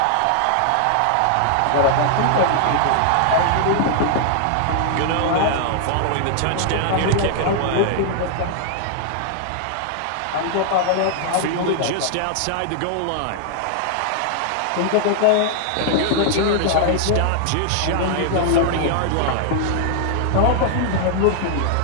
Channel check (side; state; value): both; different; correlation 0.00